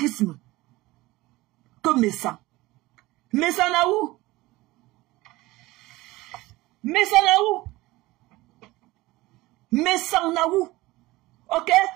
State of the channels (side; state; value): left; quieter; 19.5 dB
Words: que mes sangs. Mes anaou. Mais ça n'a où? Mais ça n'a où? Ok?